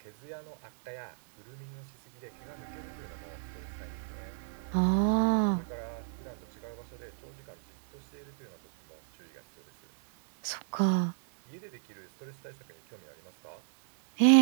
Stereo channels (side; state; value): left; silent; 56 dB below the other